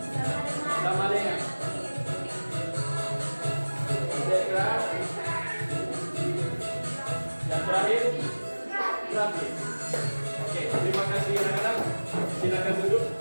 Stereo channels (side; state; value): both; inverted; correlation -1.00